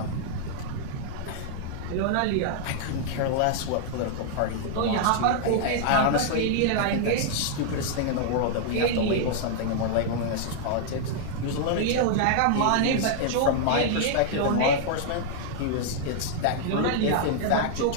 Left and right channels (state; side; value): different; both; correlation -0.01